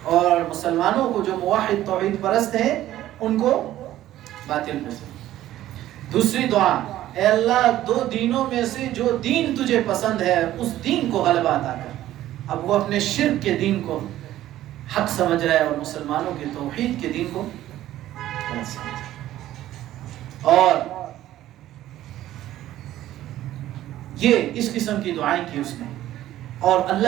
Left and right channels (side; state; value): left; quieter; 13.8 dB